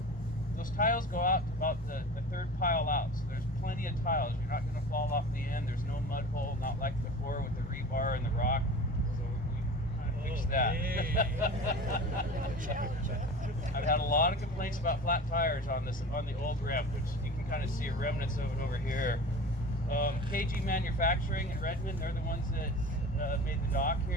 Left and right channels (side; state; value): both; normal; correlation 0.36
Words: those tiles go out to about the third pile out. So there's plenty of tiles. You're not going to fall off the end. There's no mud hole, not like before with the rebar and the rock. So we kind of fixed that. I've had a lot of complaints about flat tires on the old ramp, which you can kind of see remnants of it over here. KG Manufacturing in Redmond, they're the ones that made the dock